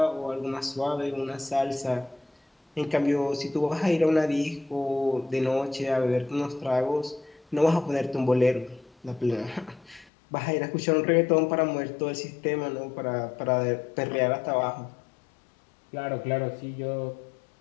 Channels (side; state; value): right; drops out; at 10.1 s